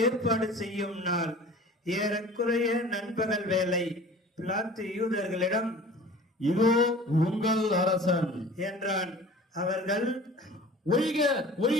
ஏற்பாடு செய்யும் நாள். ஏறக்குறைய நண்பகல் வேலை. பிலாத்து யூதர்களிடம், இதோ உங்கள் அரசன் என்றான். அவர்கள், ஒழிக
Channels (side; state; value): both; normal; correlation 0.44